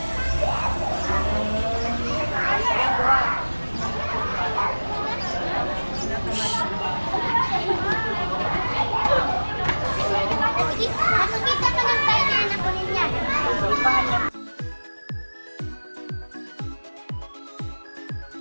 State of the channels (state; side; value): inverted; both; correlation -1.00